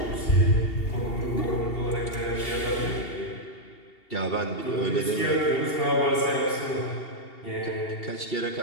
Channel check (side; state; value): right; late; 2.7 ms